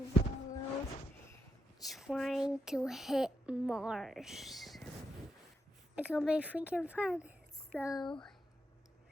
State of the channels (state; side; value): normal; both; correlation 0.83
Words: balls trying to hit Mars. It's gonna be freaking fun. So